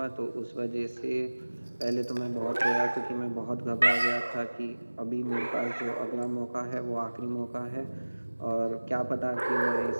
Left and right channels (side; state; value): both; inverted; correlation -1.00